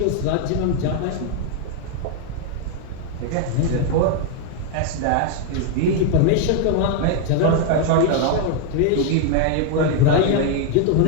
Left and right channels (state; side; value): different; both; correlation 0.00